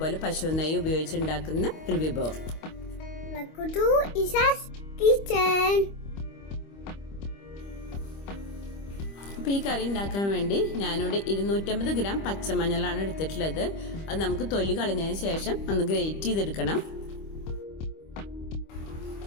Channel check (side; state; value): right; late; 25 ms